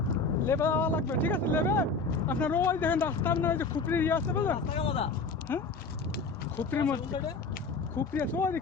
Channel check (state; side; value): quieter; right; 4.1 dB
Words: লেবে যাওয়া লাগবে। ঠিক আছে, লেবে আপনার ওই দেখেন রাস্তা, আপনার ওই যে খুপড়ির ইয়ে আছে বুঝলেন? হ্যাঁ, খুপড়ির মধ্যে খুপড়ি আছে, ওই